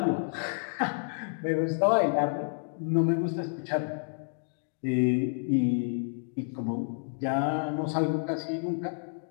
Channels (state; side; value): silent; right; digital silence